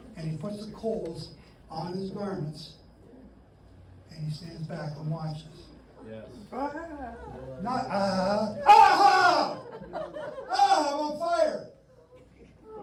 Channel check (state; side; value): identical; both; correlation 1.00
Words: And he puts the coals on his garments. And he stands back and watches. Yes. Not I'm on fire.